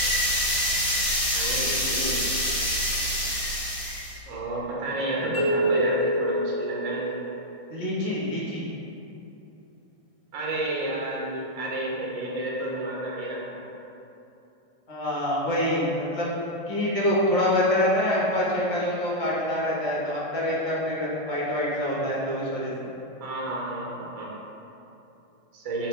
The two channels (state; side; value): late; left; 1.6 ms